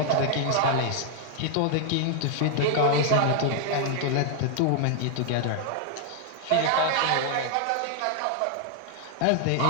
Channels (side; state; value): both; different; correlation 0.00